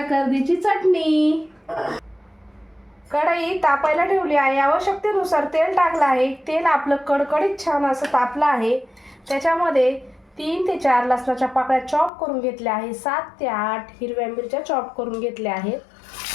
कर्दीची चटणी। कढई तापायला ठेवली आहे। आवश्यकतेनुसार तेल टाकलं आहे। तेल आपलं कडकडीत छान असं तापलं आहे। त्याच्यामध्ये 3 ते 4 लसणाच्या पाकळ्या चॉप करून घेतल्या आहे। 7 ते 8 हिरव्या मिरच्या चॉप करून घेतल्या आहेत।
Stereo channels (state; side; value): drops out; right; at 12.1 s